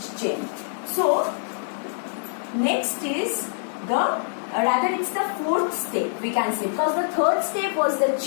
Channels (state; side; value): silent; right; digital silence